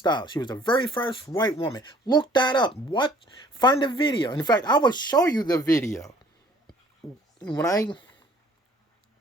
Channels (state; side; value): normal; both; correlation 0.55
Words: She was the very first white woman. Look that up. What? Find the video. In fact, I will show you the video. When I